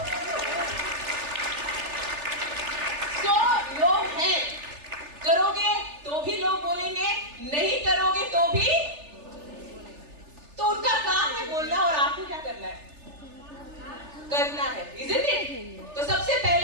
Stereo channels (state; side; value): late; left; 3.4 ms